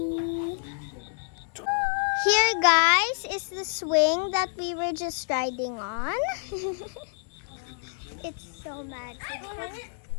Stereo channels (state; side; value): silent; right; 59 dB below the other